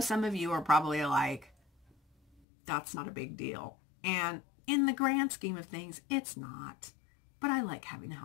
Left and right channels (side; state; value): right; drops out; at 2.4 s